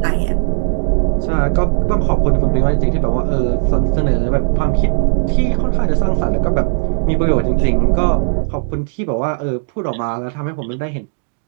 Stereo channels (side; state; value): left; silent; digital silence